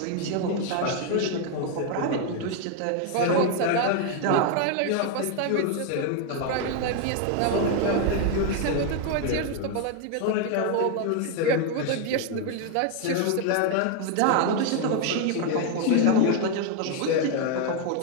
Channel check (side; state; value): both; different; correlation 0.01